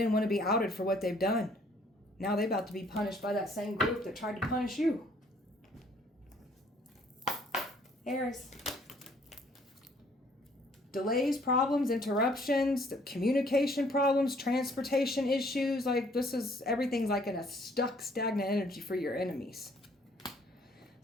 want to be outed for what they've done. Now they're about to be punished by that same group that tried to punish you. Aries. Delays, problems, interruptions, communication problems, transportation issues. Like everything's like in a stagnant energy for your enemies.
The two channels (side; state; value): both; normal; correlation 0.61